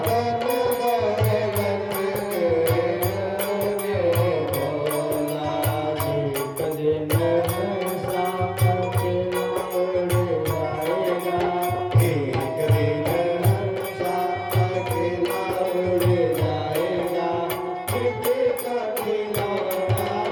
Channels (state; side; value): identical; both; correlation 1.00